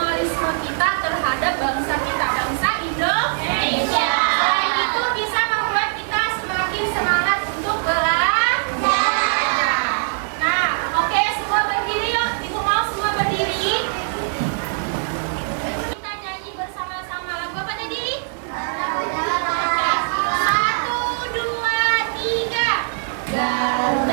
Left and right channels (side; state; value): left; silent; digital silence